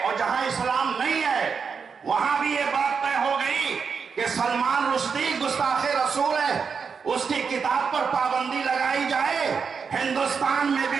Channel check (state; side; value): quieter; left; 5.8 dB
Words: اور جہاں اسلام نہیں ہے وہاں بھی یہ بات طے ہو گئی کہ سلمان رشدی گستاخ رسول ہے، اس کی کتاب پر پابندی لگائی جائے۔ ہندوستان میں